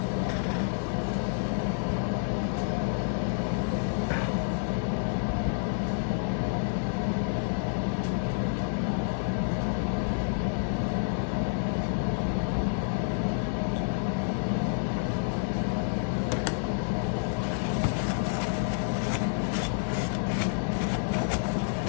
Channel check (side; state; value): right; silent; digital silence